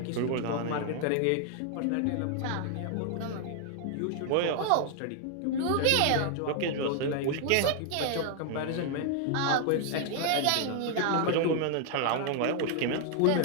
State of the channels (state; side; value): different; both; correlation 0.00